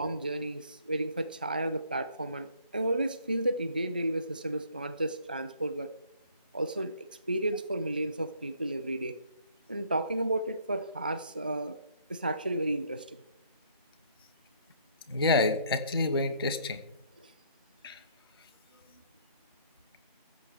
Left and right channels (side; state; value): both; inverted; correlation -0.63